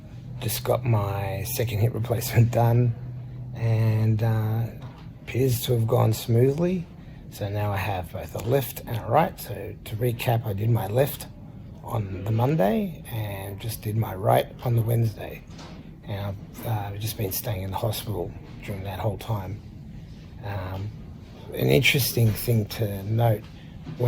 Just got my second hip replacement done, and appears to have gone smoothly. So now I have both a left and a right. So to recap, I did my left on the Monday and just did my right on the Wednesday. And I've just been staying in the hospital during that whole time. An interesting thing to note,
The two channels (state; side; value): identical; both; correlation 1.00